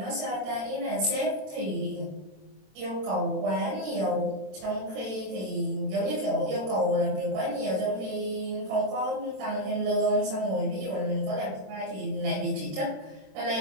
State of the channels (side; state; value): left; late; 27 ms